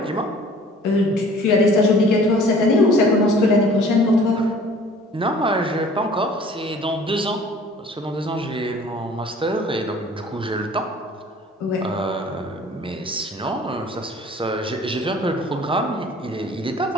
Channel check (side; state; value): both; normal; correlation 0.50